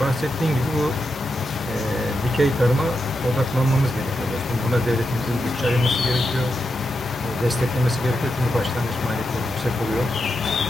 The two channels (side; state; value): both; normal; correlation 0.86